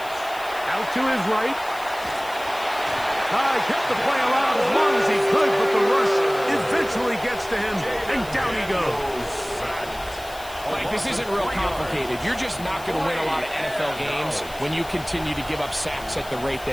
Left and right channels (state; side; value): noise; left; hiss, 18 dB below the sound